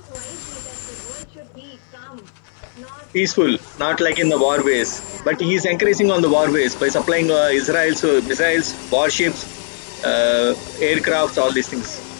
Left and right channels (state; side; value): silent; right; 67 dB below the other